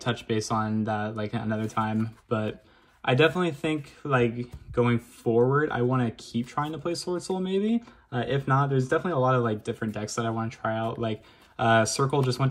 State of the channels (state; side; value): identical; both; correlation 1.00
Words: touch base on that like another time, but I definitely think like going forward, I want to keep trying to play Swordsoul maybe. If not, there's definitely a lot of like different decks that I want to try out. Like Circle just went